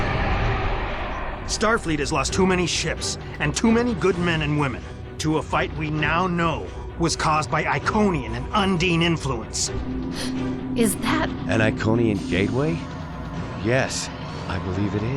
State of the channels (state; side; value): identical; both; correlation 1.00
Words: Starfleet has lost too many ships and too many good men and women to a fight we now know was caused by Iconian and Undine influence. Is that... An Iconian gateway? Yes, I believe it